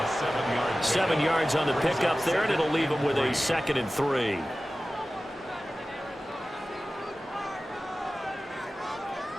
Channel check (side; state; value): both; normal; correlation 0.96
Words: 7 yards on the pickup there, and it'll leave him with a 2nd and 3.